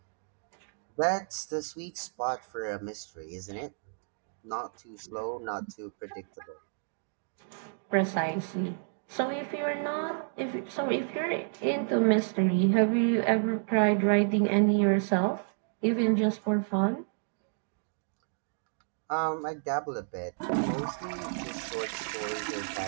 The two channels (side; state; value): left; silent; digital silence